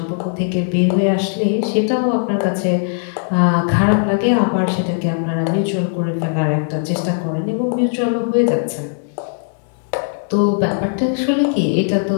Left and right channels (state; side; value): silent; right; 67 dB below the other